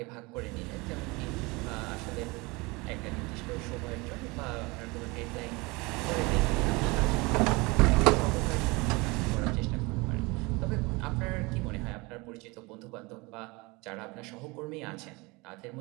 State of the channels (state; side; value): quieter; left; 25.3 dB